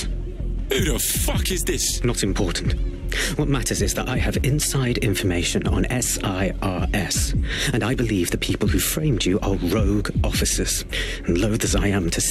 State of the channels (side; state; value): both; identical; correlation 1.00